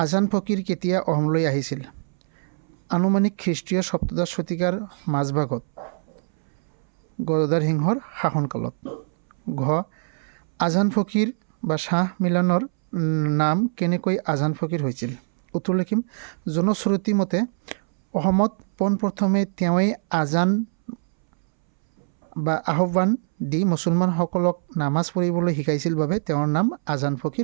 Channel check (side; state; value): left; silent; 63 dB below the other